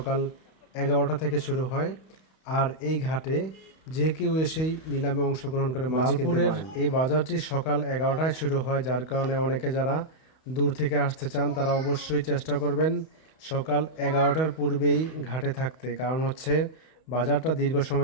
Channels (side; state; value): right; late; 31 ms